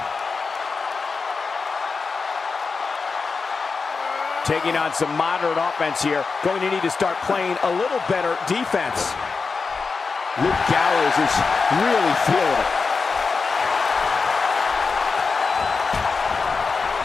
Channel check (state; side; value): quieter; right; 4.7 dB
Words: Taking on some moderate offense here. Going to need to start playing a little better defense. Luke Gallows is really feeling it.